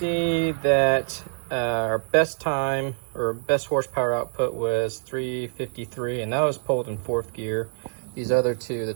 that our best time or best horsepower output was 353, and that was pulled in 4th gear. These other two, the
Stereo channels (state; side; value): silent; left; digital silence